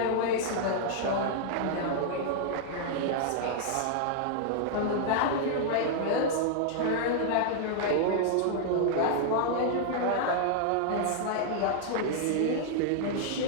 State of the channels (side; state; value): both; different; correlation -0.01